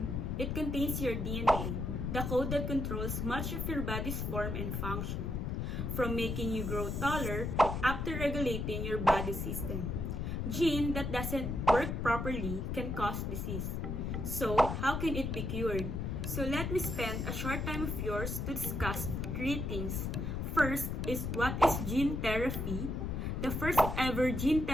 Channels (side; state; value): left; noise; rumble, 2 dB below the sound